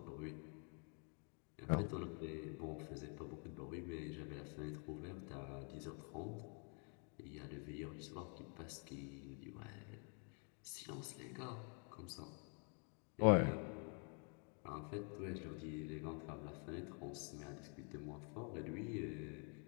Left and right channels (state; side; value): quieter; right; 39.6 dB